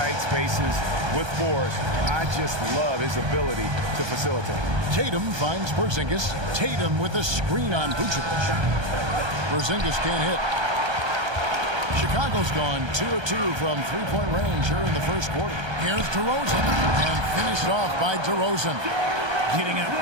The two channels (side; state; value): left; late; 1.3 ms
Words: spaces with force. I just love his ability to facilitate. Tatum finds Porzingis. Tatum with a screen on Vucevic. Porzingis can't hit. Chicago's gone 2 of 2 from three-point range here in the first quarter. Here's DeRozan. And finished off by DeRozan. Getting up